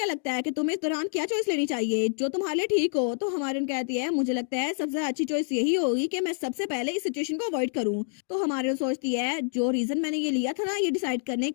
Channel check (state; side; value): silent; right; digital silence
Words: लगता है कि तुम्हें इस दौरान क्या चॉइस लेनी चाहिए जो तुम्हारे लिए ठीक हो। तो हमारी उन कहती है मुझे लगता है सबसे अच्छी चॉइस यही होगी कि मैं सबसे पहले इस सिचुएशन को अवॉइड करूं। तो हमारी सोचती है जो रीजन मैंने ये लिया था ना ये डिसाइड करने